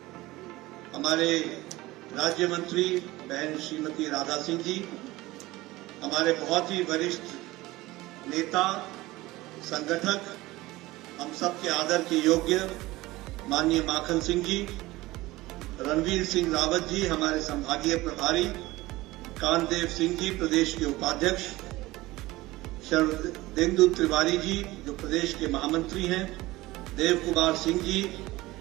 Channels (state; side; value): quieter; left; 19.0 dB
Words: हमारे राज्य मंत्री बहन श्रीमती राधा सिंह जी, हमारे बहुत ही वरिष्ठ नेता संगठक, हम सबके आदर के योग्य माननीय माखन सिंह जी, रणवीर सिंह रावत जी हमारे संभागीय प्रभारी, कांतदेव सिंह जी प्रदेश के उपाध्यक्ष, शरदेंदु तिवारी जी जो प्रदेश के महामंत्री हैं, देव कुमार सिंह जी,